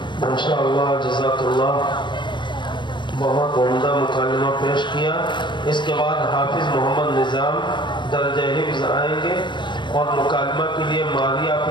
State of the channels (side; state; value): right; late; 0.22 ms